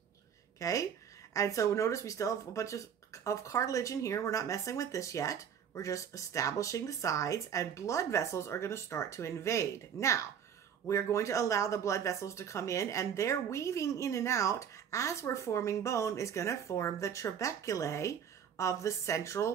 Okay? And so notice we still have a bunch of cartilage in here. We're not messing with this yet. We're just establishing the sides, and blood vessels are going to start to invade. Now, we're going to allow the blood vessels to come in, and they're weaving in and out as we're forming bone is going to form the trabeculae of the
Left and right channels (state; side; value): quieter; left; 8.1 dB